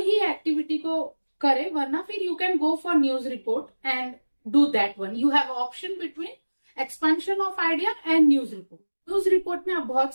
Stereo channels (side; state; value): both; inverted; correlation -1.00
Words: एक्टिविटी को करे, वरना फिर you can go for news report and do that one. You have option between expansion of idea and news report. News report में आप बहुत